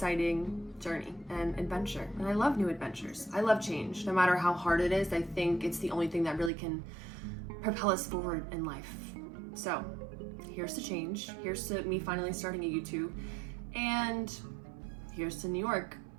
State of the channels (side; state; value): left; drops out; at 6.5 s